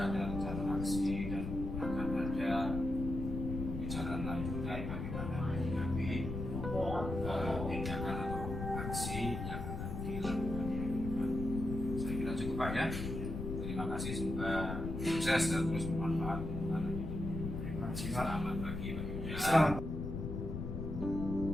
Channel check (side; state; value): left; noise; rumble, 4 dB below the sound